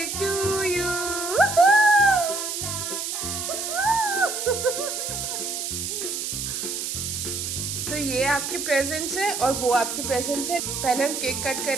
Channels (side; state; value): right; noise; hiss, 3 dB below the sound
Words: to you. तो ये आपके प्रेजेंट्स है और वो आपके प्रेजेंट्स है। पहले हम केक कट